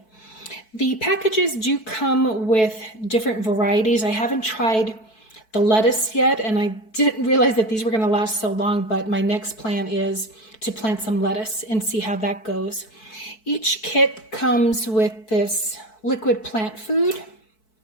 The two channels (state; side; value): late; right; 4.6 ms